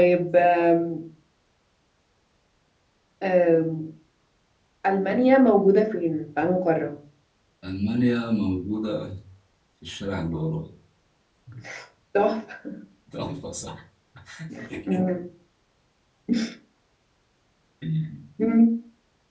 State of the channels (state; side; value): identical; both; correlation 1.00